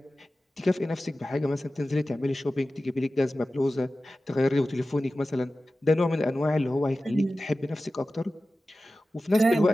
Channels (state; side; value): normal; both; correlation 0.95